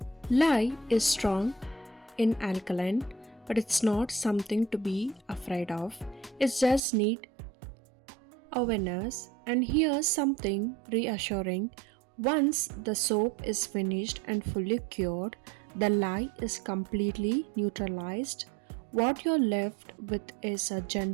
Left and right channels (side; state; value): left; drops out; at 6.8 s